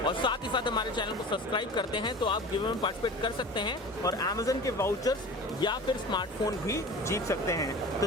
और साथ ही साथ हमारे चैनल को सब्सक्राइब करते हैं तो आप गिव अवे में पार्टिसिपेट कर सकते हैं और अमेजन के वाउचर्स या फिर स्मार्टफोन भी जीत सकते हैं। तो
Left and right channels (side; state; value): both; normal; correlation 0.37